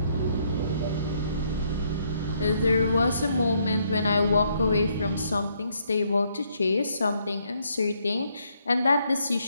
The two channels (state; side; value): inverted; both; correlation -0.72